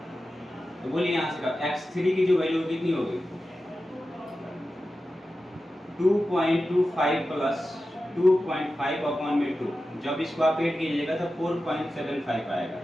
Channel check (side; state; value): both; normal; correlation 0.93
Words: तो बोलिए यहाँ से x3 की जो वैल्यू कितनी होगी 2.25 प्लस 2.5 अपॉन में 2। जब इसको आप ऐड कीजिएगा तो 4.75 आएगा